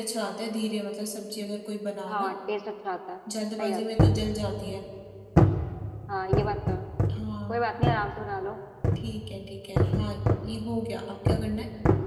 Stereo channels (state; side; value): identical; both; correlation 1.00